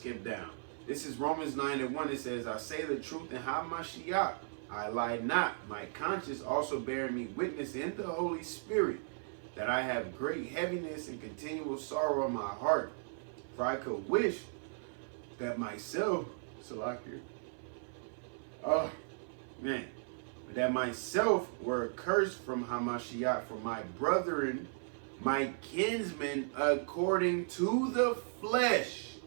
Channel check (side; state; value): left; silent; 54 dB below the other